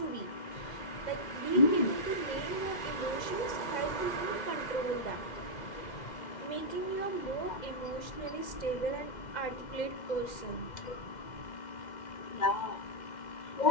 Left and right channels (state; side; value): late; right; 2.1 ms